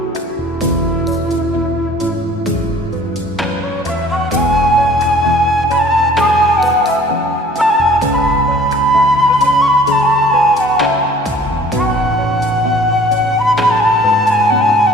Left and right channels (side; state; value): both; normal; correlation 0.52